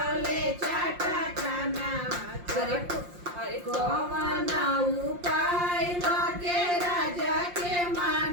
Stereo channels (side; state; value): left; late; 5.7 ms